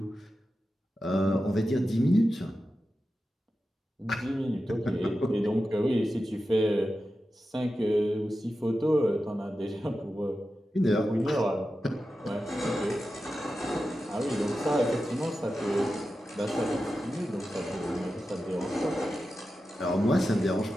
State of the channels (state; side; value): normal; both; correlation 0.92